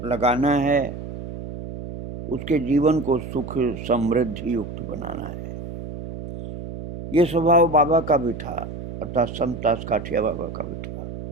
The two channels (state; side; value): noise; right; hum, 9 dB below the sound